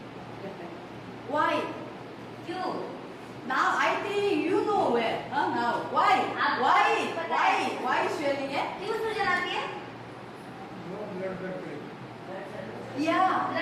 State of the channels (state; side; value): identical; both; correlation 1.00